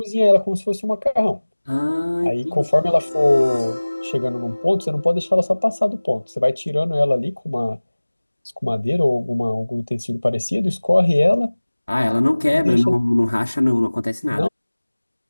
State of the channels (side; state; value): both; inverted; correlation -1.00